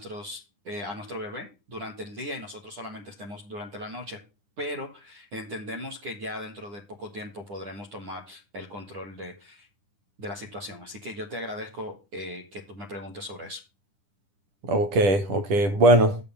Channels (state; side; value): late; left; 10 ms